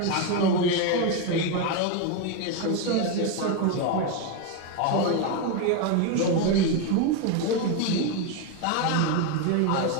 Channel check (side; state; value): both; different; correlation 0.02